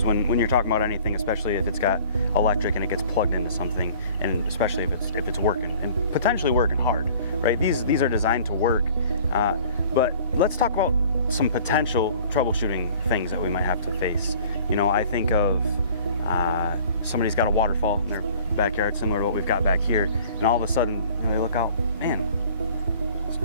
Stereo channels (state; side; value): inverted; both; correlation -0.49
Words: when you're talking about anything, especially if it's got electric and it gets plugged into something, and especially if it's working and potentially working hard, right? These are designed to work, but let's talk about some potential troubleshooting things that we might have to face. You know, I think of somebody's got a waterfall in their backyard, similar to what we've got back here, and all of a sudden, you know, they look out, man, it's